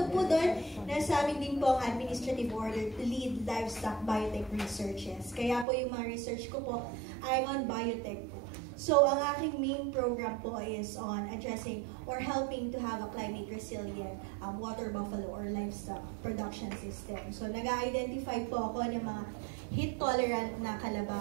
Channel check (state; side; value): drops out; left; at 5.7 s